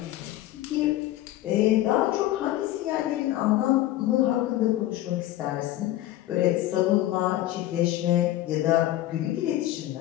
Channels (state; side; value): quieter; right; 14.7 dB